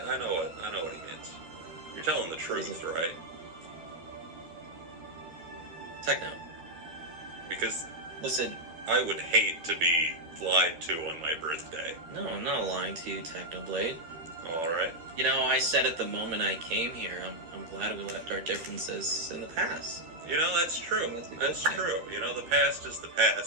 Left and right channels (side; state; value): left; late; 12 ms